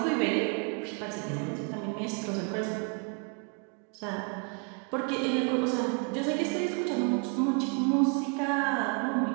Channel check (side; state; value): left; quieter; 36.3 dB